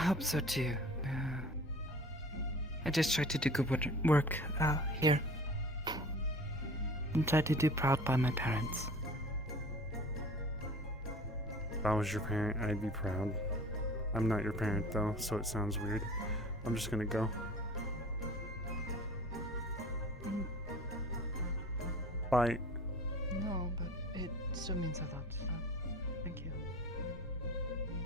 so too. I just try to do good work here. And try to do proud by my parents. If I was your parent, I'd be proud. I'm not your parent though, so it sounds weird. I'm just gonna go. Bye. No, but it still means a lot. Thank you.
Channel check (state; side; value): normal; both; correlation 0.44